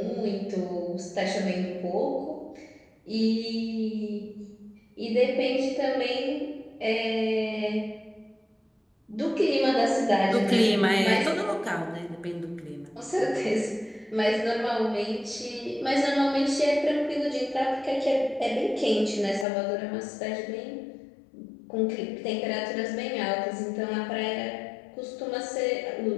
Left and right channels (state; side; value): drops out; right; at 19.5 s